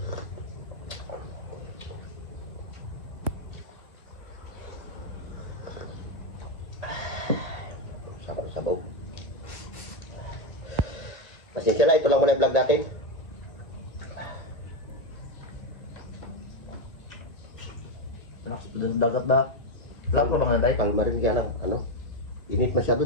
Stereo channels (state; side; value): late; right; 2.1 ms